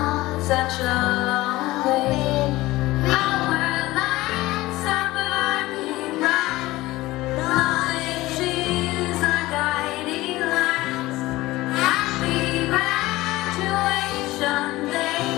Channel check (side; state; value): right; quieter; 18.4 dB